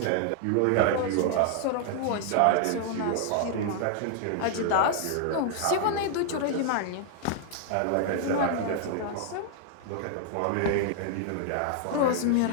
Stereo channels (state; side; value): different; both; correlation 0.00